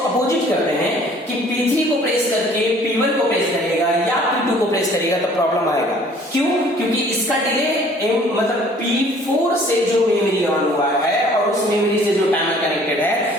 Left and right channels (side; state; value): both; normal; correlation 0.55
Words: अपोजिट करते हैं कि P3 को प्रेस करके P1 को प्रेस करेगा या P2 को प्रेस करेगा, तो प्रॉब्लम आएगा। क्यों? क्योंकि इसका डिले मतलब P4 से जो मेमोरी ऑन हुआ है और उस मेमोरी से जो टाइमर कनेक्टेड है